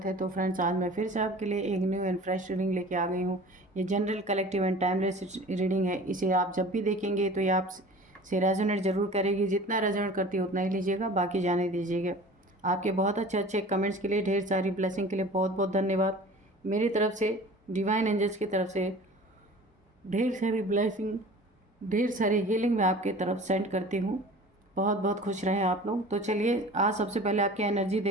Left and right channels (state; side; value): normal; both; correlation 0.42